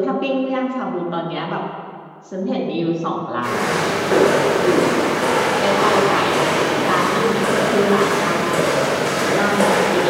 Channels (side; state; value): both; identical; correlation 1.00